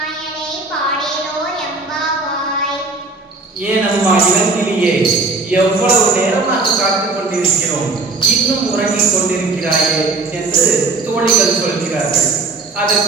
ஏன் அம்மா இளங்கிலியே, எவ்வளவு நேரமாக காத்துக் கொண்டிருக்கிறோம், இன்னும் உறங்கிக் கொண்டிருக்கிறாயே என்று தோழிகள் சொல்கிறார்கள்.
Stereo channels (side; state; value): left; quieter; 3.7 dB